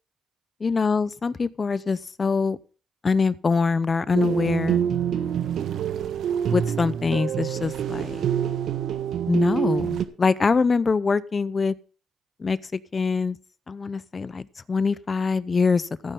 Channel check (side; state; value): both; normal; correlation 0.82